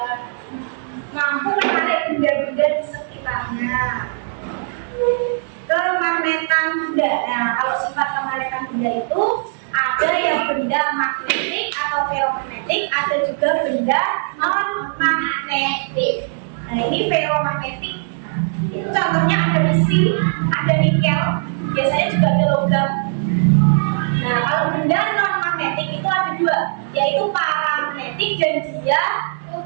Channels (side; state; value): left; silent; digital silence